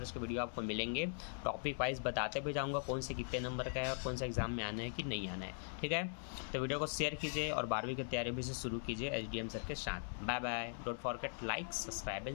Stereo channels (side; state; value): right; silent; 51 dB below the other